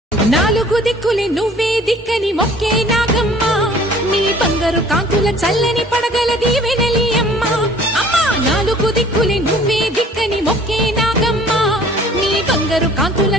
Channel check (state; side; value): normal; both; correlation 0.52